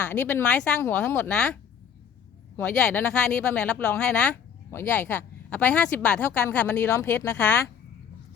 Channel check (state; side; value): quieter; right; 7.8 dB